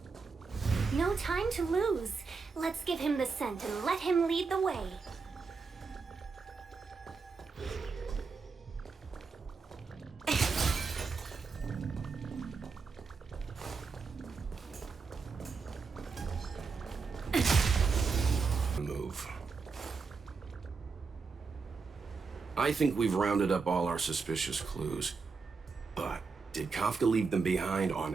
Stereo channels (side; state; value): left; quieter; 4.8 dB